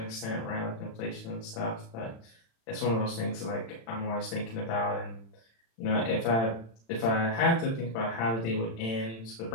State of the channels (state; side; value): late; right; 35 ms